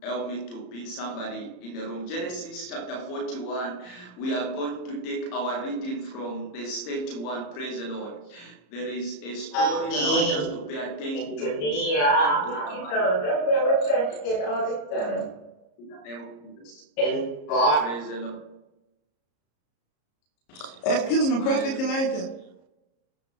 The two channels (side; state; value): right; late; 34 ms